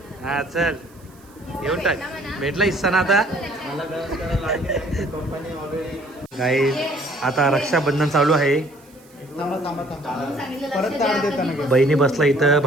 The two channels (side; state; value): right; noise; hiss, 28 dB below the sound